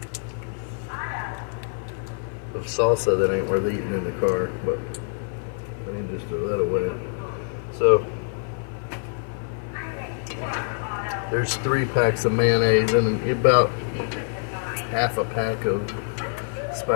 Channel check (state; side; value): silent; right; 55 dB below the other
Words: of salsa that ain't worth eating in the car, but I need to just throw that away. So there's 3 packs of mayonnaise and about half a pack of